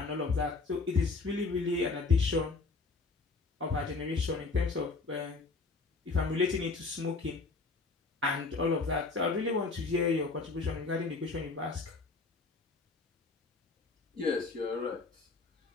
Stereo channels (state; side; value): quieter; right; 4.0 dB